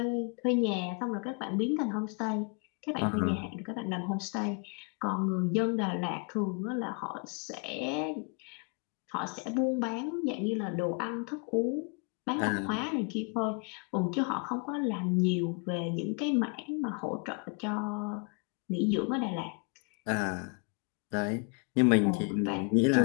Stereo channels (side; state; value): right; quieter; 35.7 dB